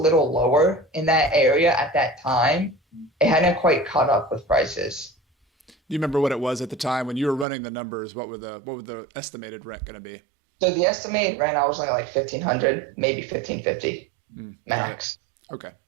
lower in that area at that time. It hadn't quite caught up with prices. Do you remember what it was at the time when you were running the numbers? What were the estimated rent going to be? So the estimated rent, I was like $1,500, maybe $1,550 max. Okay.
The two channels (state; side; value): drops out; left; at 7.5 s